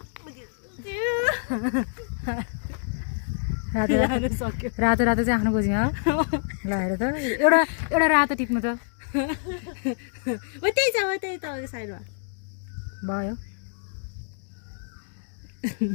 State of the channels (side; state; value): right; silent; digital silence